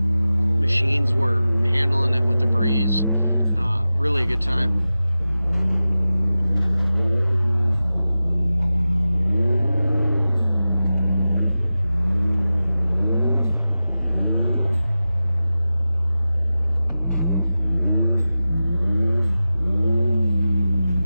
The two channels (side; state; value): both; inverted; correlation -0.94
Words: were handling it with the breeze. Really a good time.